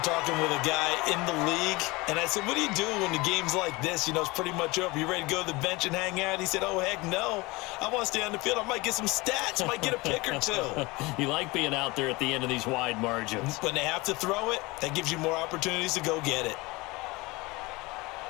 talking with a guy in the league, and I said, what do you do when the game's like this? You know, it's pretty much over. You ready to go to the bench and hang out? He said, oh, heck no. I want to stay on the field. I might get some stats. I might get a pick or two. You like being out there at the end of these wide margins. When they have to throw it, that gives you more opportunities to go get it.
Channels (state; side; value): quieter; right; 23.3 dB